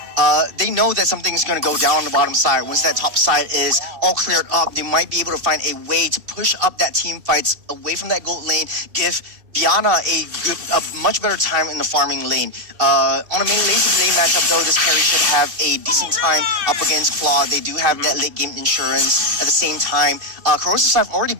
They know that something's going to go down on the bottom side. Once that top side is all cleared up, they might be able to find a way to push up that team fights away from that gold lane, give Diana a much better time in the farming lane. On a main lane matchup though, this carry should have a decent time up against Claw. They do have that late game insurance. At the same time, Corrosive Scythe already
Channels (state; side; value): late; left; 2.7 ms